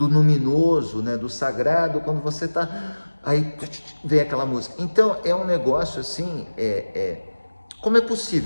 luminoso, né, do sagrado, quando você está... Aí vem aquela música. Então, é um negócio assim, como é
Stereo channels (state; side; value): inverted; both; correlation -1.00